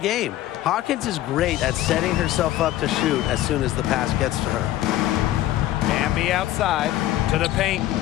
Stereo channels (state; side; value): quieter; right; 14.3 dB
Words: Hawkins is great at setting herself up to shoot as soon as the pass gets to her. Hamby outside to the paint.